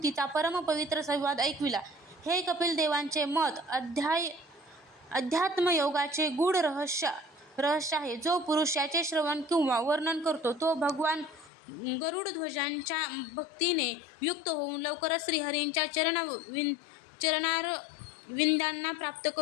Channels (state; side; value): drops out; right; at 11.5 s